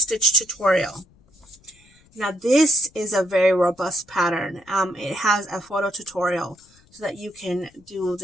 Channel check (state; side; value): noise; left; rumble, 30 dB below the sound